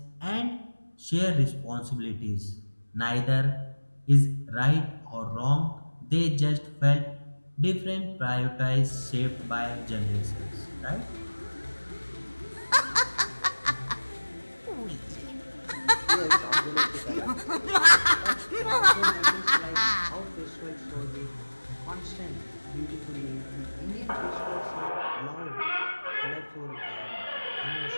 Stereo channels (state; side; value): inverted; both; correlation -1.00